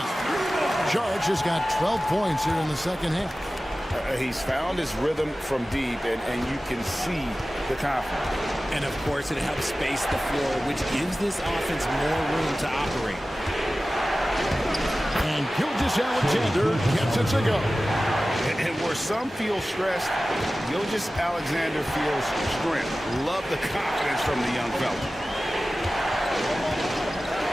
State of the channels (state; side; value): normal; both; correlation 0.96